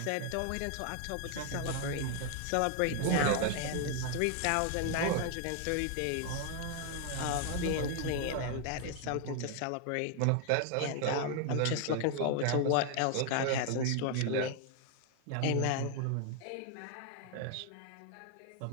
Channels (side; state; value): both; different; correlation 0.00